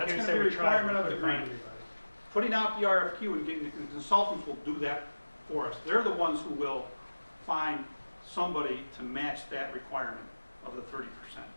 a we requirement of the couldn't find grant. anybody. putting out the RFQ and getting the consultants will do that for us. They're the ones who will find somebody to match that requirement of the 30%.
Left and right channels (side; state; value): both; inverted; correlation -1.00